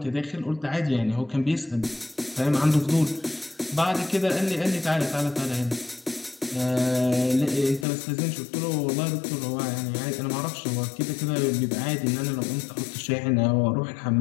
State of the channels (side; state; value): right; drops out; at 7.9 s